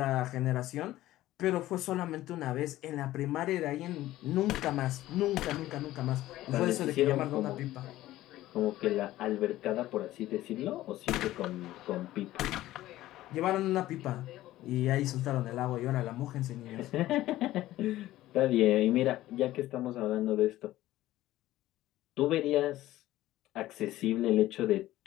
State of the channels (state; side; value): quieter; right; 15.4 dB